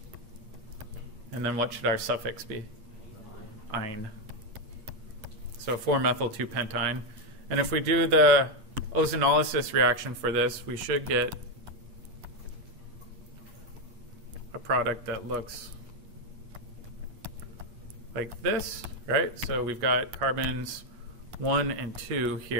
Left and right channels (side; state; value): left; late; 8.7 ms